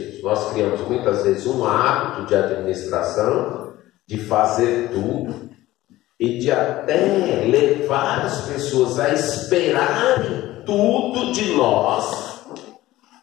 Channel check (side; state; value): right; quieter; 16.5 dB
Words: Nós criamos muitas vezes um hábito de administração, de fazer tudo e de até levar as pessoas a esperarem tudo de nós.